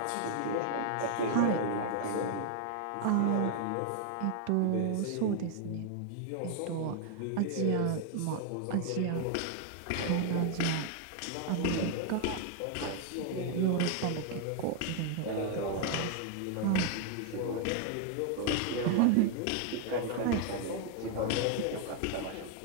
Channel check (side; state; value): both; different; correlation 0.00